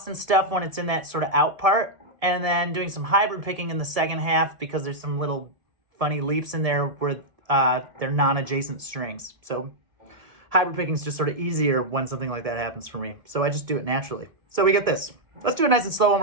and stuff when it's in that sort of out part, and then doing some hybrid picking in the second half because there's some little funny leaps in there where they're non-adjacent strings. So hybrid picking is just sort of easier when something like that happens for me. So I just do it naturally. So we get this. Let's do it nice and slow one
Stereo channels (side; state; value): left; late; 1.7 ms